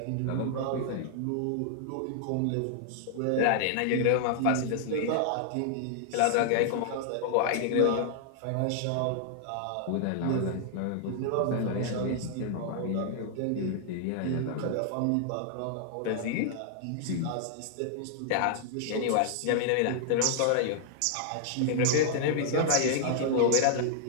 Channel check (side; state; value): both; different; correlation -0.01